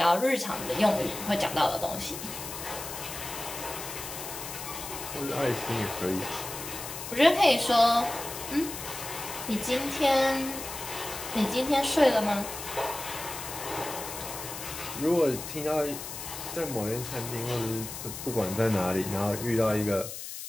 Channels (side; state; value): left; noise; hiss, 9 dB below the sound